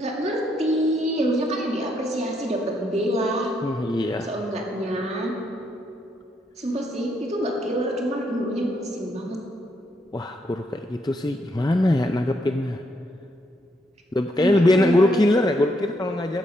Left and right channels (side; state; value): both; normal; correlation 0.76